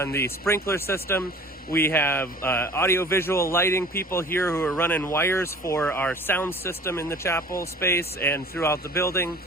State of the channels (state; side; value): normal; both; correlation 0.46